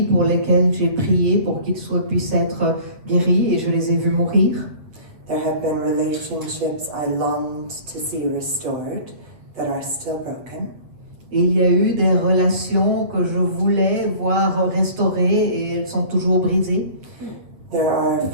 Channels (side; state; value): left; late; 8.0 ms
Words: pour lesquels j'ai prié pour qu'ils puissent être guéris et je les ai vus mourir. There have been relationships I longed to see restored that are still broken. Et il y a eu des relations que je voulais voir restaurées et elles sont toujours brisées. There are